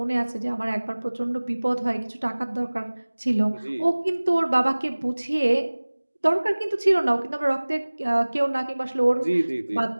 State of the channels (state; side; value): inverted; both; correlation -1.00